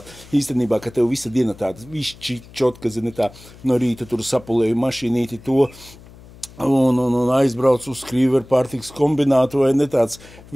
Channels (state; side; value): noise; left; hum, 21 dB below the sound